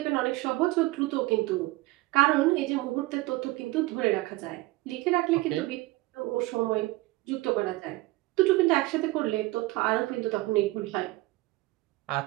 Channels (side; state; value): left; quieter; 20.0 dB